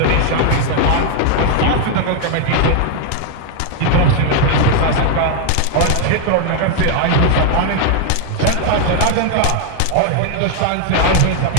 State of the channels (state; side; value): different; both; correlation 0.00